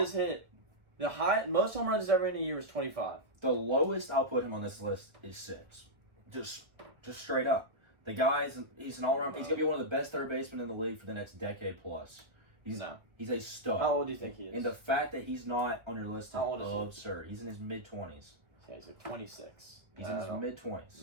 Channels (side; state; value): left; late; 1.3 ms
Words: hit the most home runs ever in a year is 25. The lowest I'll put him on this list is 6. Just straight up. The he's an all-around. He's gonna be one of the best third basemen in the league for the next decade plus. He's a stud. How old do you think he is? And the fact that he's not on your list is absurd. He? He's in his mid-20s. Yeah, he's like 26. He's in his